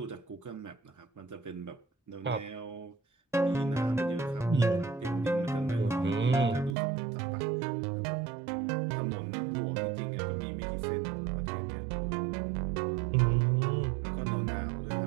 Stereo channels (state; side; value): drops out; left; at 6.8 s